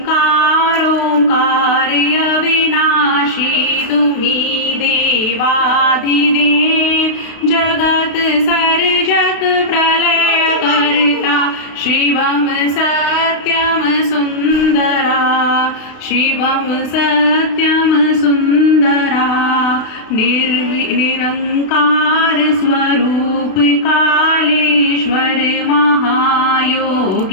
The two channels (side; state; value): right; late; 32 ms